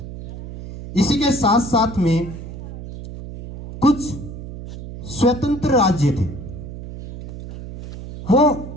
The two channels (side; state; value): right; noise; hum, 11 dB below the sound